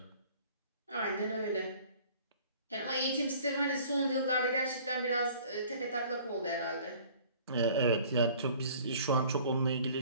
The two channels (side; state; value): both; inverted; correlation -0.51